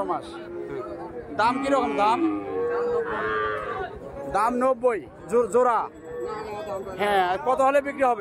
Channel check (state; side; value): identical; both; correlation 1.00